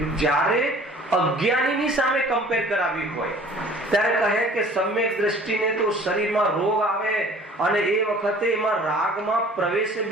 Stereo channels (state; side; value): normal; both; correlation 0.49